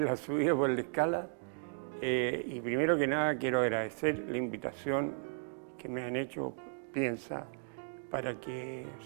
la subida por la escala. Y primero que nada quiero agradecer la invitación que me han hecho Piensa para que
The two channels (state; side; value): silent; left; digital silence